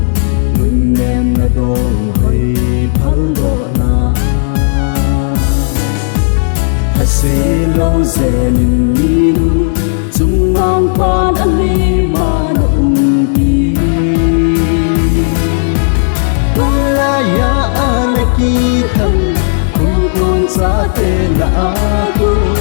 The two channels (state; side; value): silent; right; digital silence